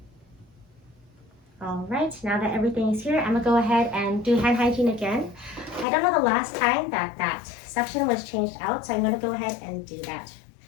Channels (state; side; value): drops out; right; at 5.9 s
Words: All right, now that everything is here, I'm gonna go ahead and do hand hygiene again. I don't know the last time that suction was changed out, so I'm gonna go ahead and do that